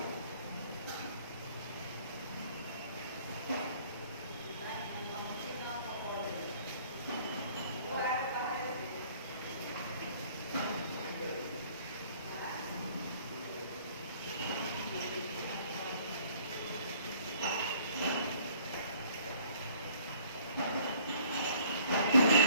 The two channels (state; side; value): inverted; both; correlation -0.56